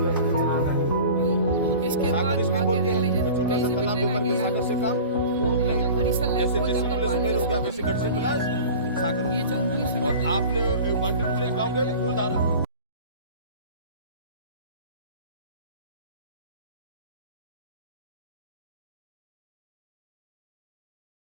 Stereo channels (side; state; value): both; inverted; correlation -0.39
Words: इसके बाद आगे देख लीजिए छोटा सा तालाब में करके सागर से काम, और ये जो गरीसा लेक जैसे होता है प्लेस में हो गया वैसे गढ़ से प्लस सागर, ये 24 और आपने 1 2 3 गाँव के फूलधारा